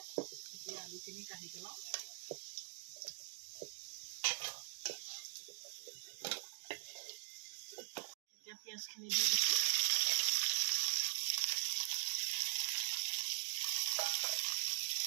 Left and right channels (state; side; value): silent; left; digital silence